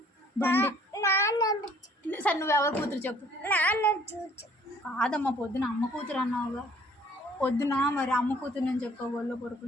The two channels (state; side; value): normal; both; correlation 0.58